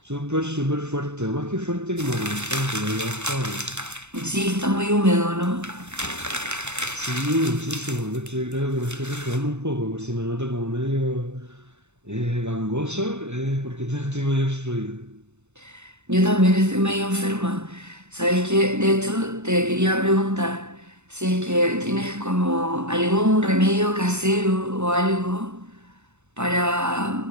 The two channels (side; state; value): left; late; 0.82 ms